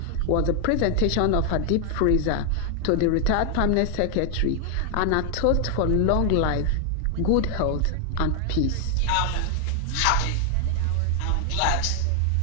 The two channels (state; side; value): different; both; correlation 0.00